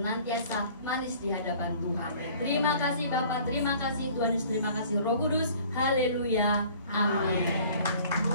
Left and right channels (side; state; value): both; inverted; correlation -0.51